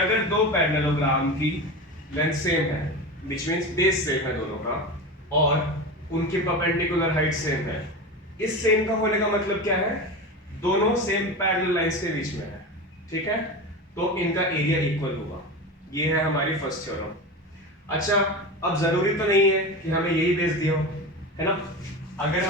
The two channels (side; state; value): both; normal; correlation 0.25